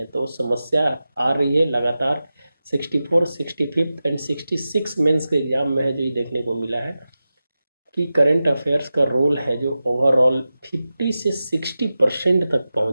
तो समस्या आ रही है लगातार। 64, 65 एंड 66 मेंस के एग्जाम में है जो ये देखने को मिला है कि करंट अफेयर्स का रोल है जो ओवरऑल 50 से 60% तक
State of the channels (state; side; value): inverted; both; correlation -0.93